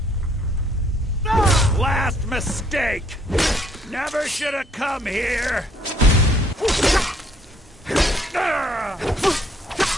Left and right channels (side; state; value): both; normal; correlation 0.65